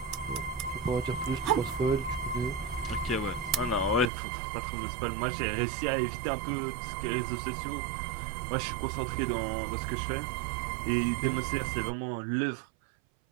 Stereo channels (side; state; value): left; drops out; at 4.1 s